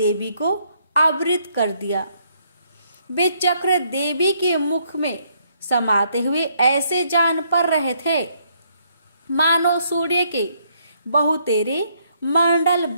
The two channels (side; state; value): both; inverted; correlation -0.70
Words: को आवृत कर दिया। वे चक्र देवी के मुख में समाते हुए ऐसे जान पड़ रहे थे मानो सूर्य के बहुतेरे मंडल